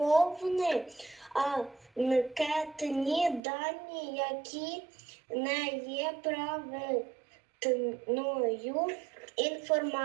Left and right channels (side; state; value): left; drops out; at 3.4 s